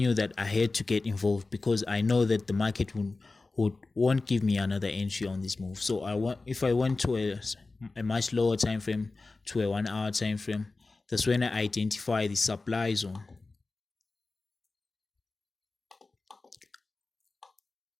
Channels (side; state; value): right; quieter; 3.5 dB